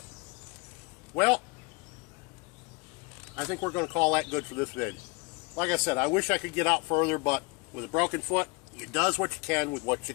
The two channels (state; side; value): quieter; right; 28.4 dB